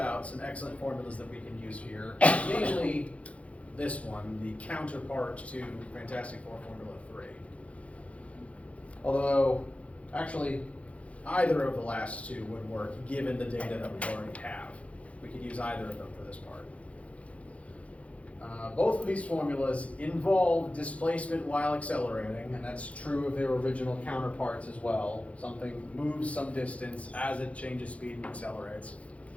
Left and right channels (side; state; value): right; late; 0.064 ms